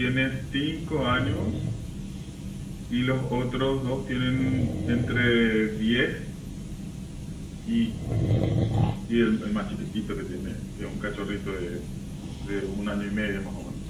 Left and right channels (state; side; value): identical; both; correlation 1.00